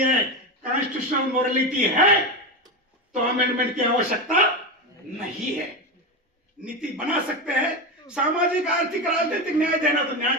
कॉन्स्टिट्यूशनल मोरालिटी है तो अमेंडमेंट की आवश्यकता नहीं है। नीति बना सकते हैं, सामाजिक आर्थिक राजनीतिक न्याय देना तो न्याय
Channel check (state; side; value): normal; both; correlation 0.17